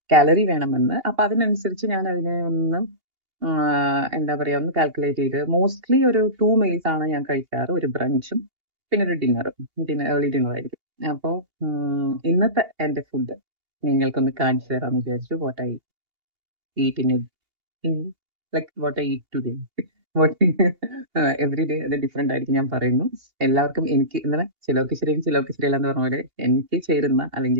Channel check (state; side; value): late; left; 2.8 ms